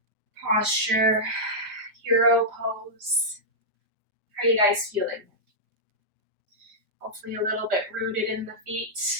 posture. Hero pose. How are you guys feeling? Hopefully a little bit rooted in the feet.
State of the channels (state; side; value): late; left; 4.9 ms